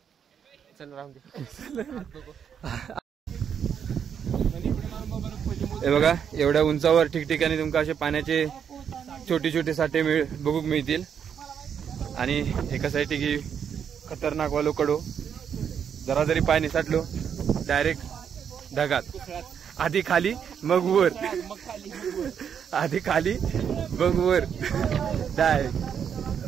चल राहून दे. हे बघा एवढ्या उंचावर ठिकठिकाणी तुमका असे पाण्याचे छोटे छोटे साठे बघूक मिळतील. आणि एका साईड की खतरनाक वालो कडो. जरा जरी पाणी साठलो डायरेक्ट ढगात. आधी खाली मग वर. आधी खाली मग वर डायरेक्ट.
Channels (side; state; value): left; quieter; 7.8 dB